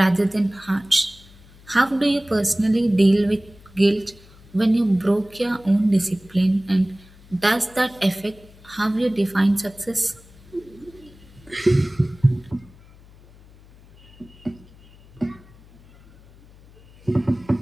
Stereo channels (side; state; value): left; noise; hum, 24 dB below the sound